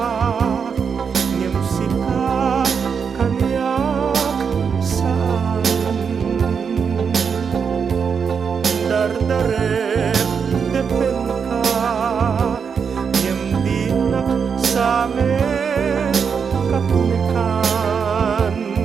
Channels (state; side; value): quieter; left; 6.3 dB